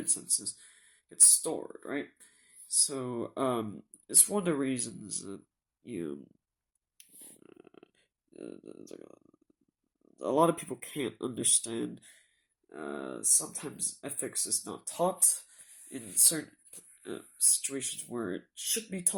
senses gets stored, right? So, it's one of the reasons that a lot of people can't understand. Sometimes ethics is not taught in certain situations where it should be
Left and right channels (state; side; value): identical; both; correlation 1.00